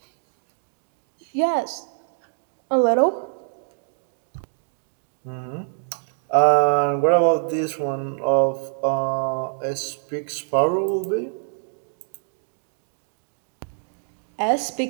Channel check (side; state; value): left; silent; digital silence